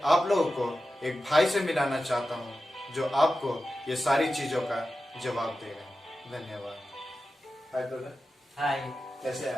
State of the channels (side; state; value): both; normal; correlation 0.93